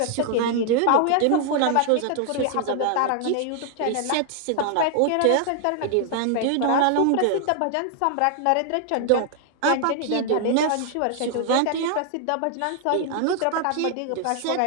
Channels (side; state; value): both; different; correlation 0.00